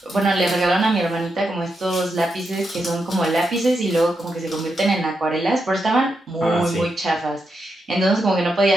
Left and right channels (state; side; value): normal; both; correlation 0.85